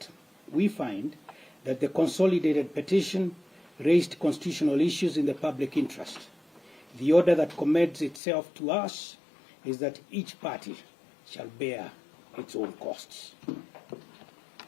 We find that the consolidated petition raised constitutional issues in the public interest. The order that commends itself to us is that each party shall bear its own costs.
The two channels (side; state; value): right; drops out; at 8.2 s